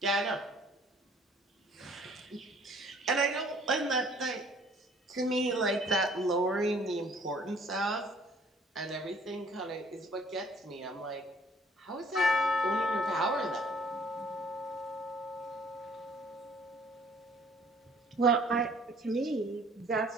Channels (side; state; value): both; normal; correlation 0.57